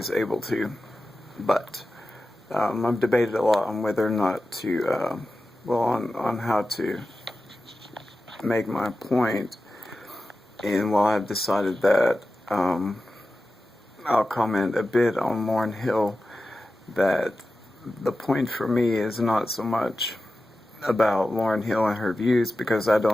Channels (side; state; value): both; normal; correlation 0.93